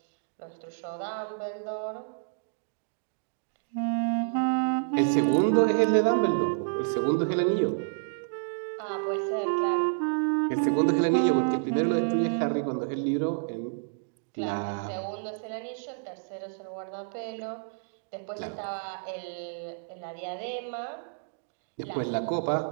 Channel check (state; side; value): silent; left; digital silence